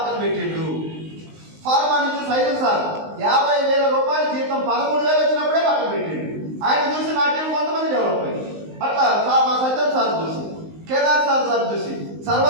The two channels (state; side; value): late; left; 19 ms